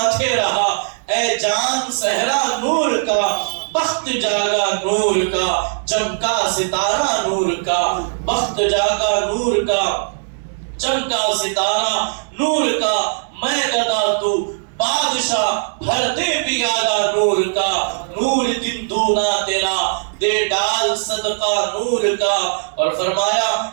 رہا اے چاند صحرا نور کا، بخت جاگا نور کا چمکا ستارہ نور کا، بخت جاگا نور کا چمکا ستارہ نور کا، میں گدا تو بادشاہ بھر دے پیالہ نور کا، نور دن دونا تیرا دے ڈال صدقہ نور کا۔ اور فرمایا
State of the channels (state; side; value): silent; left; 67 dB below the other